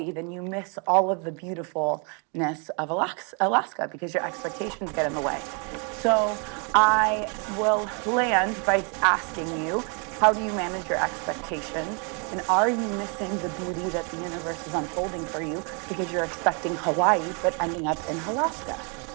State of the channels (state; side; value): quieter; left; 36.3 dB